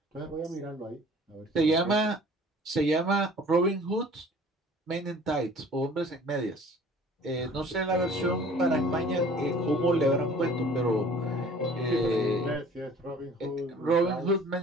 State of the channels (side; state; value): both; normal; correlation 0.49